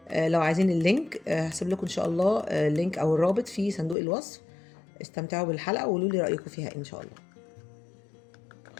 لو عايزين اللينك هسيب لكم ان شاء الله اللينك او الرابط في صندوق الوصف. استمتعوا بالحلقه وقولوا لي رايكم فيها ان شاء الله.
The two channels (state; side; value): drops out; right; at 4.0 s